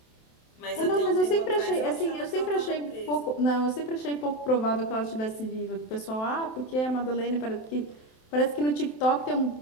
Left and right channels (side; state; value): right; late; 27 ms